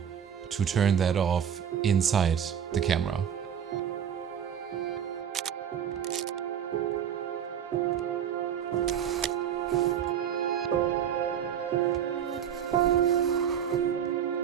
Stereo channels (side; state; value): left; quieter; 8.7 dB